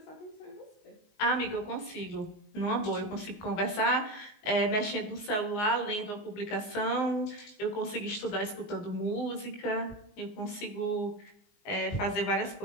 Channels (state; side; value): late; right; 19 ms